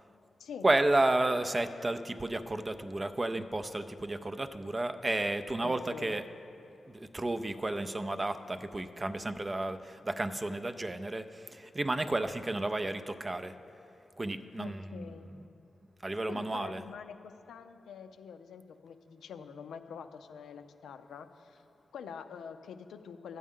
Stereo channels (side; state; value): both; normal; correlation 0.97